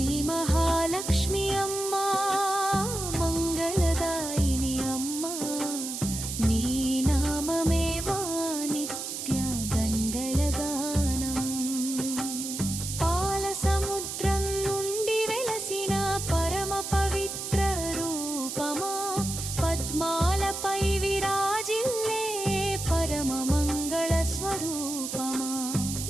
మహాలక్ష్మి అమ్మా మంగళదాయిని అమ్మా నీ నామమే మా నిత్య గంగళగానం పాల సముద్రం నుండి వెలసిన పరమ పవిత్ర రూపమా పద్మాలపై విరాజిల్లే పరమ మంగళ స్వరూపమా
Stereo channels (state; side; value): noise; right; hiss, 5 dB below the sound